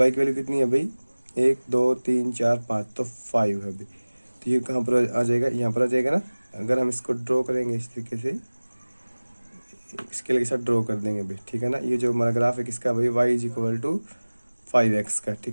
की वैल्यू कितनी है भाई, 1 2 3 4 5, तो 5 है भाई। तो ये कहाँ पर आ जाएगा, यहाँ पर आ जाएगा ना। अगर हम इसको ड्रॉ करेंगे इस तरीके से, स्केल के साथ ड्रॉ कर देंगे भाई, ठीक है ना। ये जो हमारा ग्राफ है किसका भाई, Y is equal to 5x का,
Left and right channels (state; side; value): inverted; both; correlation -1.00